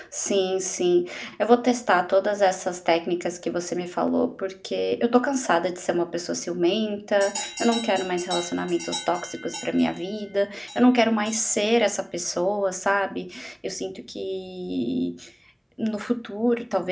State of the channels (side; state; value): both; identical; correlation 1.00